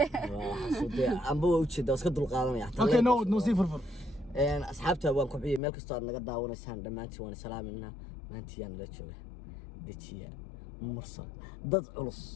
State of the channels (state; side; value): drops out; right; at 5.6 s